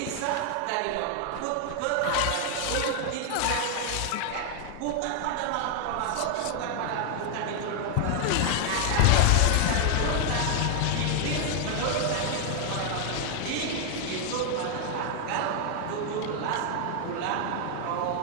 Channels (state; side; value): different; both; correlation 0.00